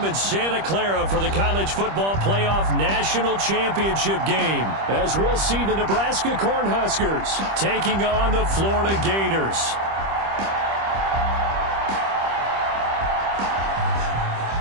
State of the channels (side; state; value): left; late; 25 ms